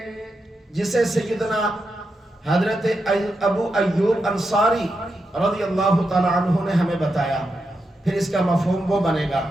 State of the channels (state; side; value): normal; both; correlation 0.86